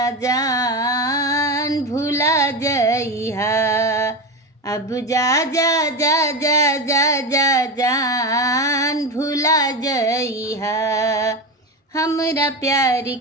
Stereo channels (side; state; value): both; normal; correlation 0.19